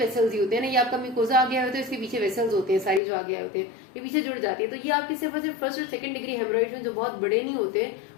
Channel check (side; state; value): right; drops out; at 3.0 s